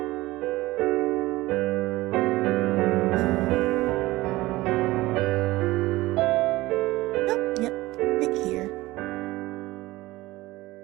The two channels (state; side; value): quieter; left; 18.9 dB